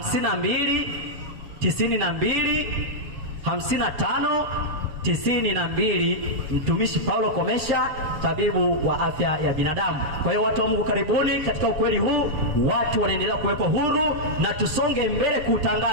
92 55 92. Mtumishi Paulo Komesha, tabibu wa afya ya binadamu. Kwa hiyo watu wa Mungu, karibuni katika ukweli huu. Watu wanaendelea kuwekwa huru, na tusonge mbele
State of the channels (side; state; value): left; late; 7.6 ms